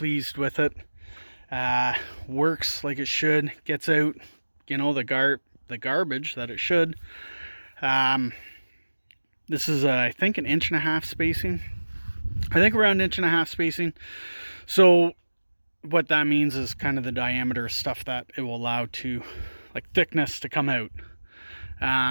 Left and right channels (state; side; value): inverted; both; correlation -1.00